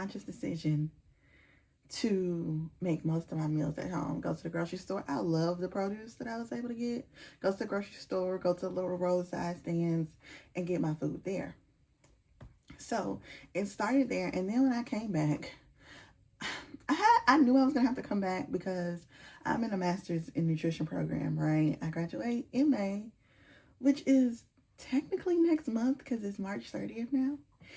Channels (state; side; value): identical; both; correlation 1.00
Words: decision to make most of my meals at home. Go to the grocery store. I love the produce that I was able to get. Go to the grocery store, go to the little roadside stands and get my food there. So it started there, and then when I came back, I knew I was gonna have to come back because I'm in a master's in nutrition program, right? I graduate in May, which is technically next month because it's March 30th now.